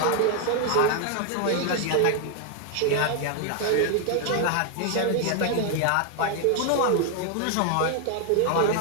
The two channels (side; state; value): both; different; correlation 0.00